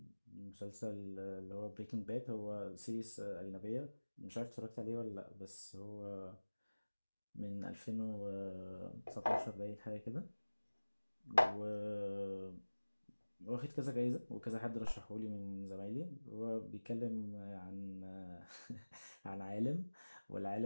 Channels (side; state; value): both; inverted; correlation -1.00